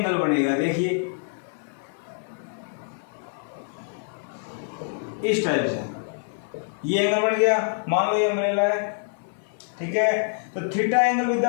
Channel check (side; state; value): right; silent; 57 dB below the other